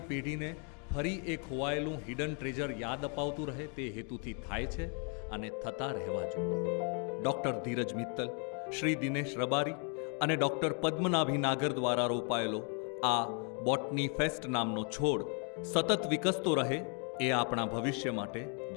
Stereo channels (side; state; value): right; quieter; 39.7 dB